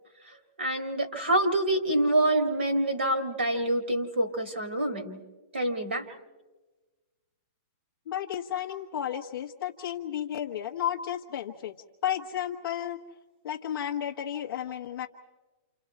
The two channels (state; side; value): inverted; both; correlation -0.53